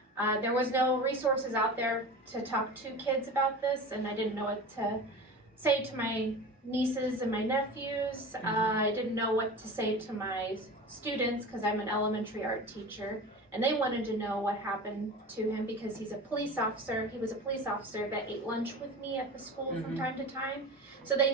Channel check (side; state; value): both; normal; correlation 0.32